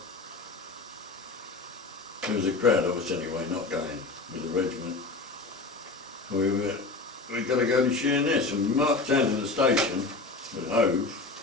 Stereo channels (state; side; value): quieter; right; 3.6 dB